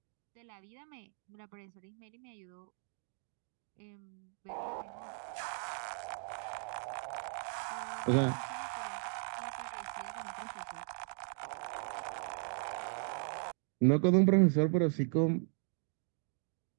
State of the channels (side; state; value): left; silent; 53 dB below the other